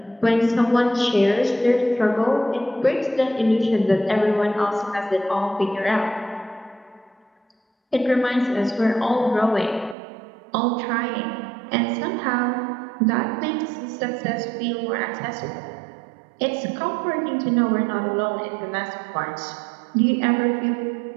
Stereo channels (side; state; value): left; drops out; at 10.0 s